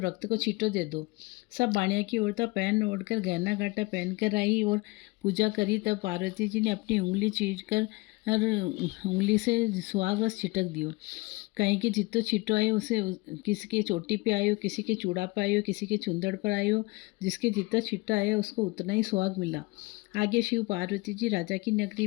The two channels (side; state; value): right; quieter; 23.5 dB